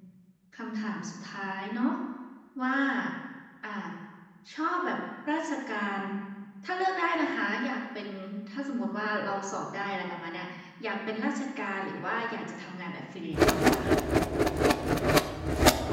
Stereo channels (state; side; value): identical; both; correlation 1.00